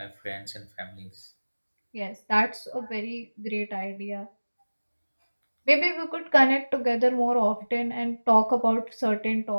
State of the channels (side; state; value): both; inverted; correlation -1.00